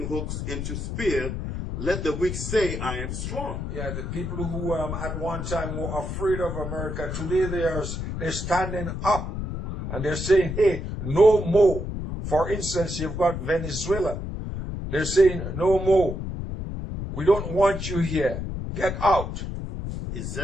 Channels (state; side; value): noise; left; rumble, 5 dB below the sound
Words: hooks into spear. Let the weak say, I am strong. Yeah, the people who at one time were afraid of America, today they're standing up and they're saying, hey, no more. For instance, you've got Venezuela. They're saying, no more. We don't want you here. Get out.